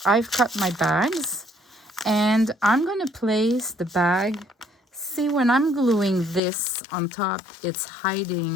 I've cut my bags, and I'm going to place the bag. See, when I'm gluing this on top, it's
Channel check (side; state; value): right; drops out; at 6.4 s